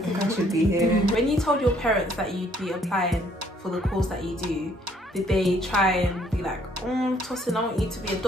think I should be here. When you told your parents that you'd be applying for the course that you do, did they try and be like, Tosin, I want you to be a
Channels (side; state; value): both; normal; correlation 0.64